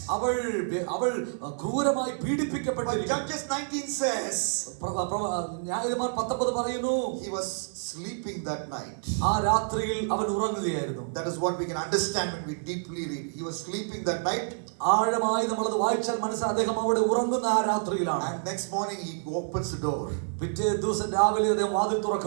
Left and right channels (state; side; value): silent; left; 58 dB below the other